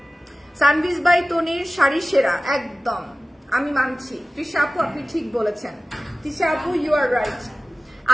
সানভিজ বাই তনির শাড়ি সেরা, একদম আমি মানছি। তৃষা আপু আপনি ঠিক বলেছেন, তৃষা আপু ইউ আর রাইট।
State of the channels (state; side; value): normal; both; correlation 0.96